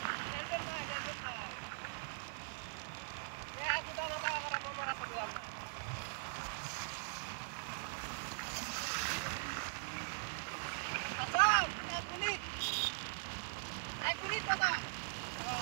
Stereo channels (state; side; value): silent; left; 50 dB below the other